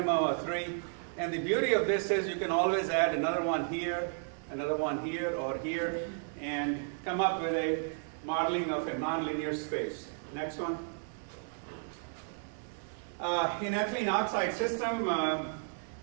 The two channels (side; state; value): left; silent; 56 dB below the other